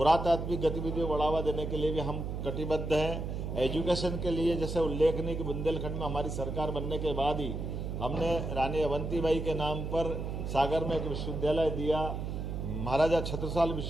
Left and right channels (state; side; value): noise; right; hum, 4 dB below the sound